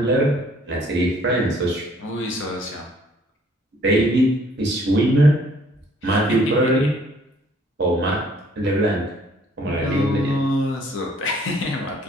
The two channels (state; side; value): normal; both; correlation 0.60